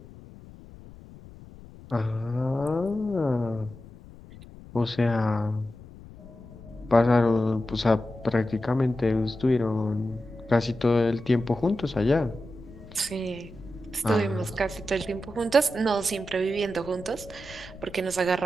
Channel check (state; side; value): noise; left; rumble, 18 dB below the sound